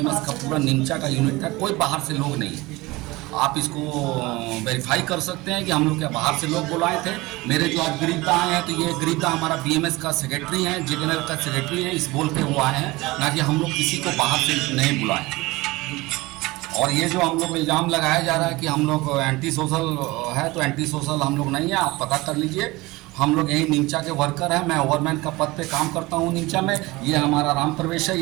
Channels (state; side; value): quieter; left; 21.3 dB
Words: का पूरा निमचा का यूनिट है, कोई बाहर से लोग नहीं है। आप इसको वेरीफाई कर सकते हैं कि हम लोग क्या बाहर से लोग बुलाए थे। मेरे जो आज गिरीदा आए हैं, तो ये गिरीदा हमारा बीएमएस का सेक्रेटरी हैं, जेनरल का सेक्रेटरी है, इस बोल के वो आए हैं, ना कि हम लोग किसी को बाहर से नहीं बुलाए। और ये जो हम लोग इल्ज़ाम लगाया जा रहा है कि हम लोग एंटी सोशल है, तो एंटी सोशल हम लोग नहीं है। आप पता कर लीजिए, हम लोग यही निमचा के वर्कर हैं। मैं ओवरमैन का पद पे काम करता हूँ निमचा में। ये हमारा राम प्रवेश है,